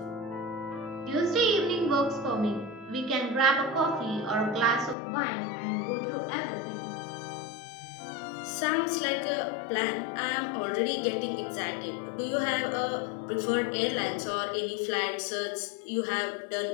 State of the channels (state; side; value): drops out; right; at 5.0 s